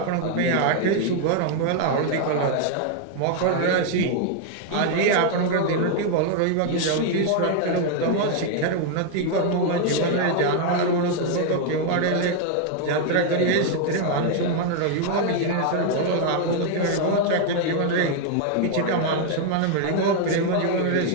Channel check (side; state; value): both; different; correlation 0.00